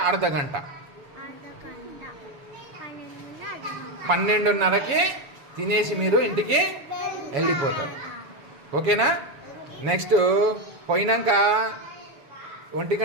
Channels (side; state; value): left; late; 7.1 ms